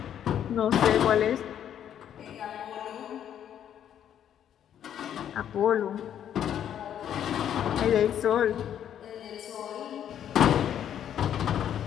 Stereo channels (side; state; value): right; quieter; 9.8 dB